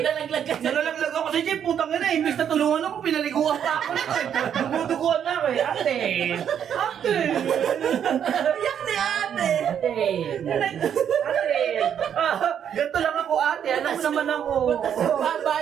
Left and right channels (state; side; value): quieter; left; 8.8 dB